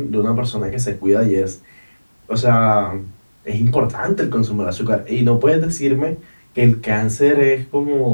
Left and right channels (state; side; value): inverted; both; correlation -1.00